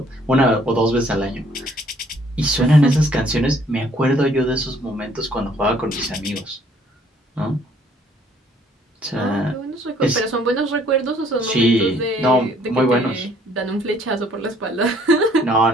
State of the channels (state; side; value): normal; both; correlation 0.61